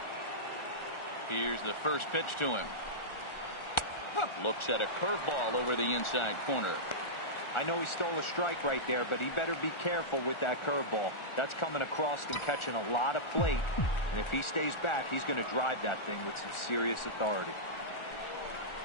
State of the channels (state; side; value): late; right; 1.4 ms